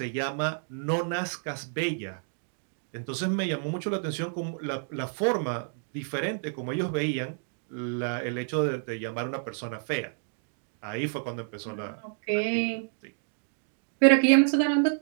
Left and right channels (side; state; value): left; silent; 58 dB below the other